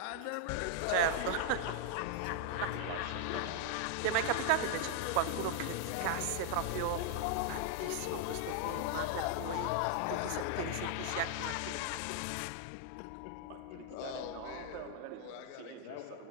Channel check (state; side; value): different; both; correlation 0.00